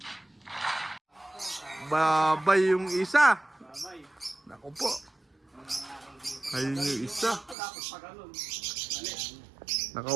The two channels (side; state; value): left; drops out; at 7.6 s